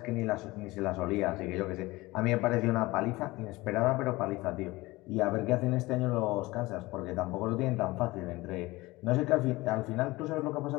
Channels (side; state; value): right; quieter; 20.7 dB